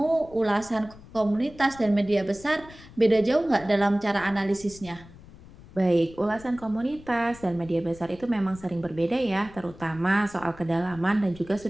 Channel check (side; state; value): left; noise; rumble, 20 dB below the sound